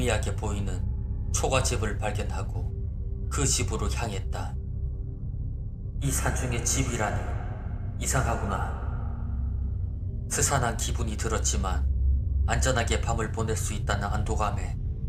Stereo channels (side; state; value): both; identical; correlation 1.00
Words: 보이는 초가집을 발견하고 그 집으로 향했다. 이 산중에 집이라니 이상하구나. 스산한 기분이 들었지만 안전하게 밤을 보낼 수 있다는 안도감에